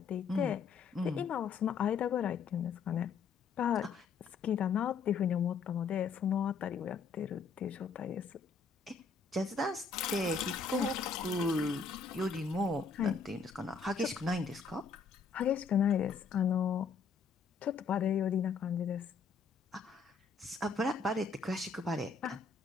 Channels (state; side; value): quieter; right; 5.2 dB